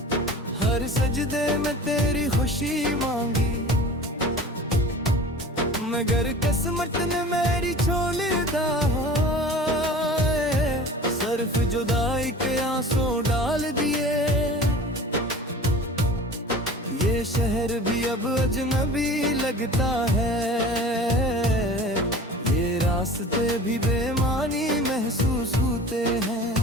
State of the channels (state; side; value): normal; both; correlation 0.40